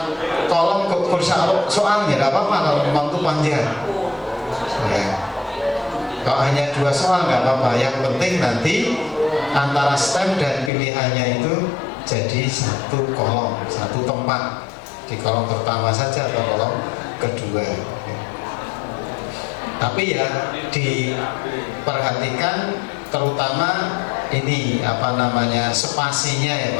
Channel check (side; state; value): right; drops out; at 10.7 s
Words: kolom soalnya tidak apa-apa kalau memang itu panjang ya. Kalau hanya 2 soal nggak apa-apa, yang penting nanti antara stem dan pilihannya itu jadi satu kolom, satu tempat, di kolom pertama saja atau kolom kedua. Tapi ya diperhatikan terutama ini apa namanya spasinya ya